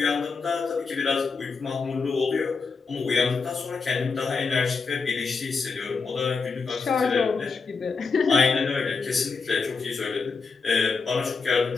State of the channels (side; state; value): right; quieter; 4.8 dB